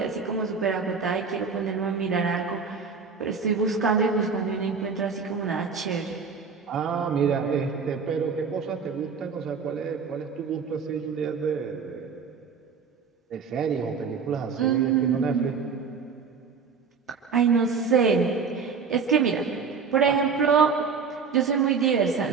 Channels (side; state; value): left; quieter; 5.6 dB